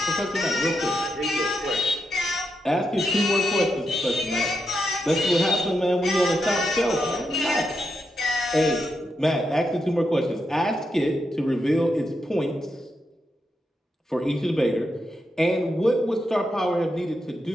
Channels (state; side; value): normal; both; correlation 0.84